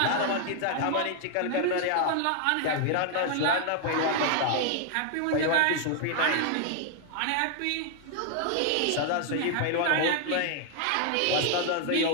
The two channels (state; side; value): different; both; correlation 0.00